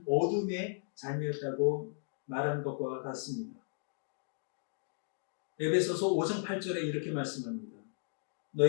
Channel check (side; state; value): right; silent; 54 dB below the other